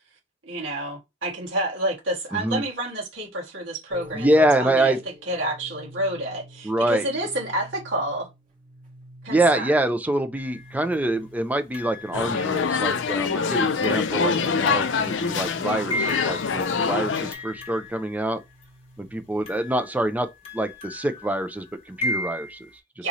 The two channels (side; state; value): both; normal; correlation 0.42